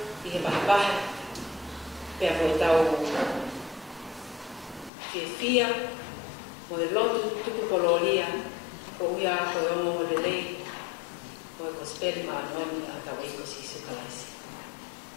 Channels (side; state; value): right; drops out; at 4.9 s